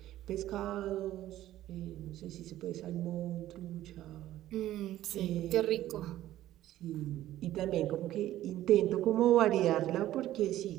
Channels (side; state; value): left; quieter; 13.9 dB